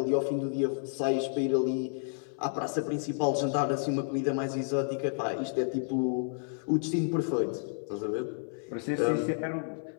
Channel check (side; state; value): right; silent; 57 dB below the other